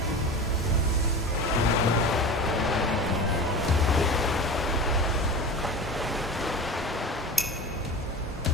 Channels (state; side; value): normal; both; correlation 0.32